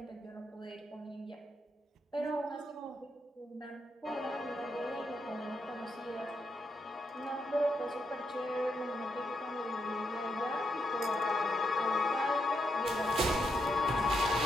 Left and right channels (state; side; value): normal; both; correlation 0.81